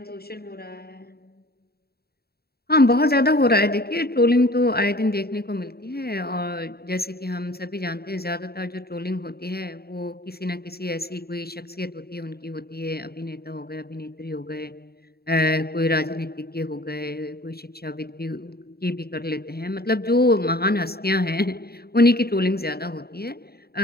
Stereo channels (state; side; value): late; right; 0.46 ms